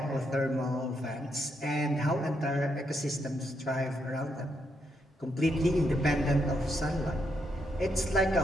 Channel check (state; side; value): normal; both; correlation 0.79